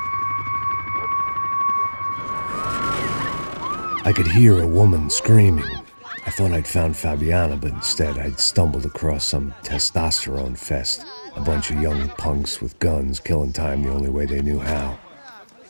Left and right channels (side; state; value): both; inverted; correlation -1.00